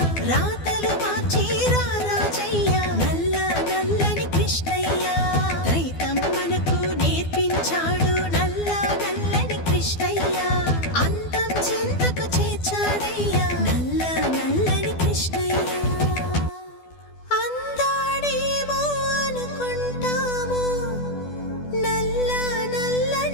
రాతలు మార్చి రారాజయ్య నల్లా నల్లని కృష్ణయ్య. ద్వైతం మనకు నేర్పించాడు నల్లా నల్లని కృష్ణయ్య, అంతం చింతకు చేర్చాడయ్యా నల్లా నల్లని కృష్ణయ్య. అందాడేమో అనుకుంటాము నల్లా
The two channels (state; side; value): late; right; 12 ms